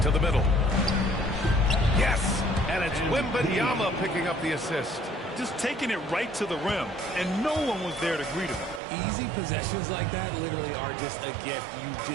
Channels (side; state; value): left; drops out; at 8.8 s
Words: To the middle. Yes. And it's Wembanyama picking up the assist. Just taking it right to the rim, and no one was there to greet him. Easy possessions like that literally are just a gift. You